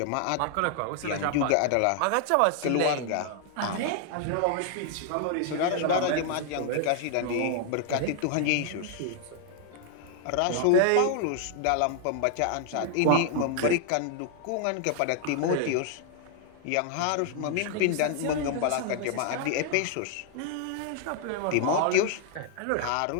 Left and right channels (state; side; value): different; both; correlation 0.00